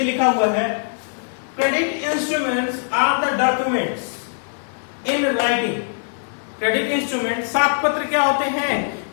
लिखा हुआ है, credit instruments are the documents in writing. Credit instrument साख पत्र क्या होते हैं?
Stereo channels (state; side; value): silent; right; digital silence